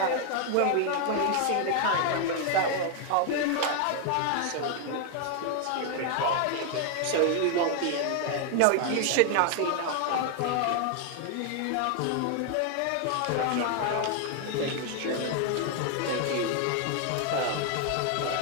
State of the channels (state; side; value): different; both; correlation 0.00